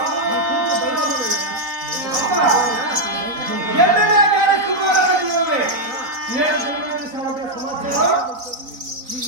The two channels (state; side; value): late; left; 4.0 ms